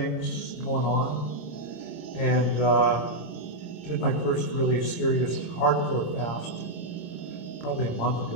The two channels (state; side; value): late; right; 26 ms